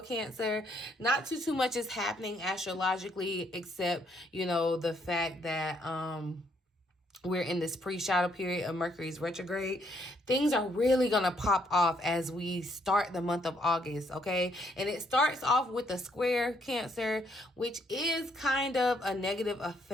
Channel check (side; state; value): both; normal; correlation 0.70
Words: not too much is happening astrologically, except, you know, the fact that we're in this pre-shadow period of Mercury's retrograde. Things are really going to pop off as we start the month of August, okay? And it starts off with a square, Cancer, which is kind of a negative